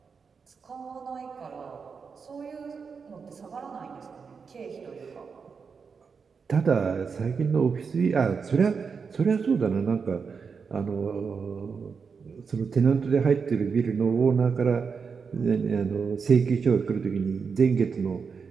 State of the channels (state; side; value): quieter; left; 5.6 dB